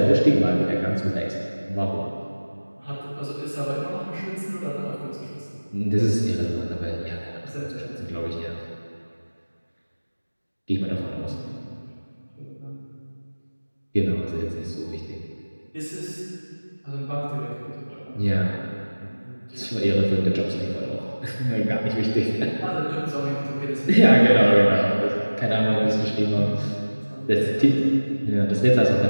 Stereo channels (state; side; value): inverted; both; correlation -1.00